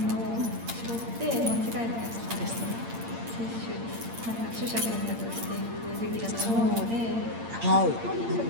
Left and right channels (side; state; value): left; late; 8.7 ms